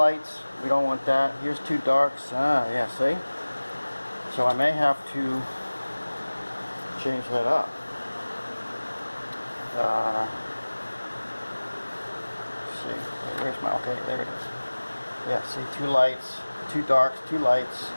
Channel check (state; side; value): inverted; both; correlation -1.00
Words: We don't want that. Here's 2 darks. Ah, yeah, see? So I may have to change that up. Let's see. Where's my, okay, there it is. Yeah, see, 2 lights, 2 darks, 2 lights.